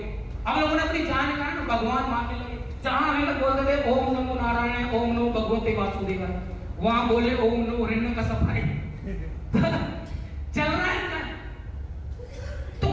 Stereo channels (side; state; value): both; identical; correlation 1.00